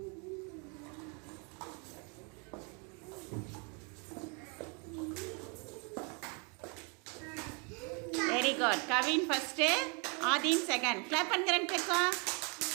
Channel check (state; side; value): quieter; left; 34.6 dB